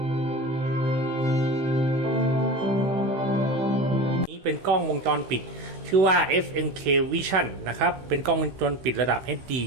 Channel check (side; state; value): left; late; 16 ms